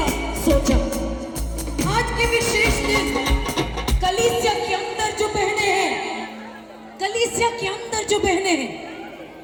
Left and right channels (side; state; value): both; identical; correlation 1.00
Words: सोचा। आज के विशेष दिन कलीसिया के अंदर जो बहनें हैं, कलीसिया के अंदर जो बहनें हैं,